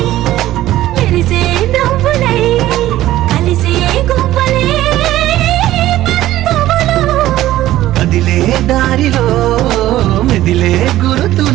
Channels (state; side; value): quieter; left; 14.6 dB